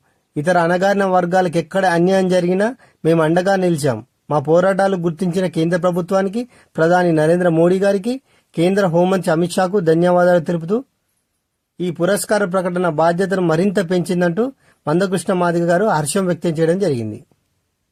ఇతర అణగారిన వర్గాలకు ఎక్కడ అన్యాయం జరిగినా మేము అండగా నిలిచాం. మా పోరాటాలు గుర్తించిన కేంద్ర ప్రభుత్వానికి, ప్రధాని నరేంద్ర మోడీ గారికి, కేంద్ర హోంమంత్రి అమిత్ షాకు ధన్యవాదాలు తెలుపుతూ ఈ పురస్కార ప్రకటన బాధ్యతను మరింత పెంచిందంటూ మందకృష్ణ మాదిగ గారు హర్షం వ్యక్తం చేయడం జరిగింది.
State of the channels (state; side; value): identical; both; correlation 1.00